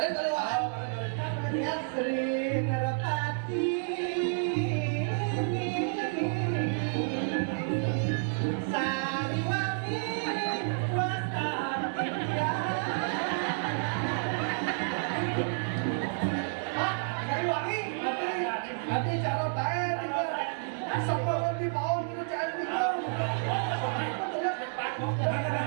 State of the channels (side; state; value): left; silent; 58 dB below the other